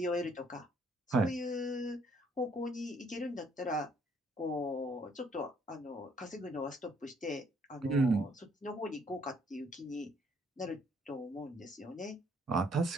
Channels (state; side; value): normal; both; correlation 0.66